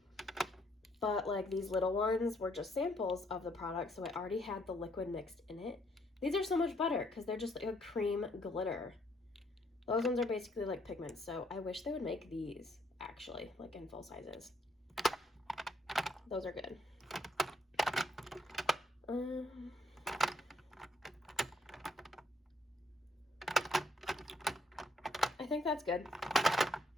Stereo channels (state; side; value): normal; both; correlation 0.70